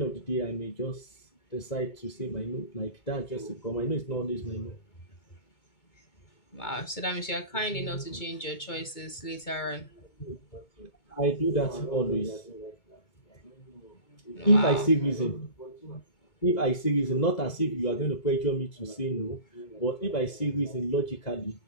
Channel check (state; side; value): late; right; 2.2 ms